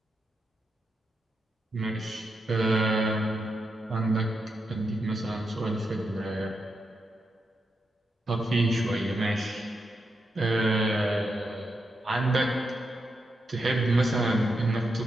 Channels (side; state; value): both; normal; correlation 0.85